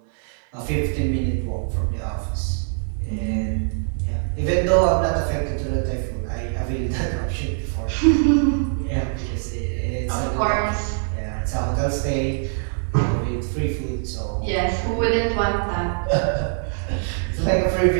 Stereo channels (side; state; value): left; silent; 58 dB below the other